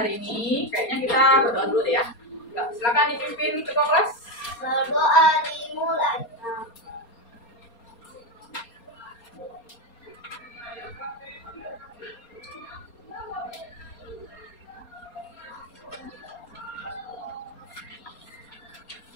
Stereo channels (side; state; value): right; late; 4.3 ms